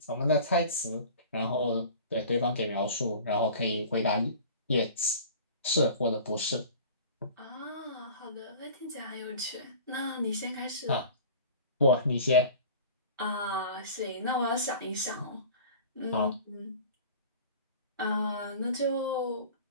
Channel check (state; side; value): inverted; both; correlation -0.41